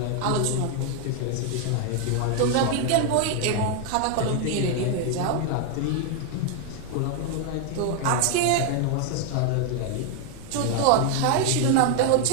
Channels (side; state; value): both; different; correlation 0.00